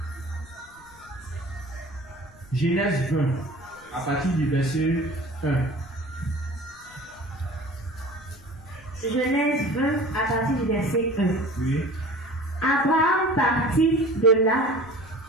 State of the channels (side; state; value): left; noise; rumble, 25 dB below the sound